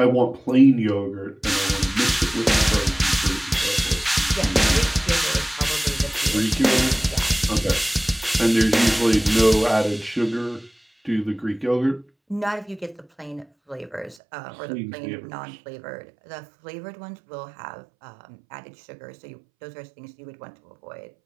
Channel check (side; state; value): left; drops out; at 14.2 s